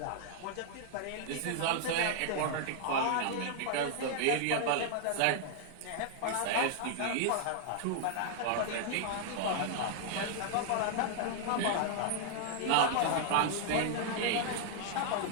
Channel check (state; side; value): different; both; correlation -0.01